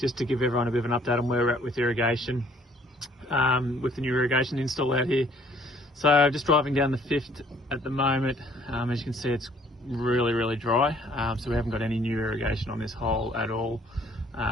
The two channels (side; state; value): both; normal; correlation 0.60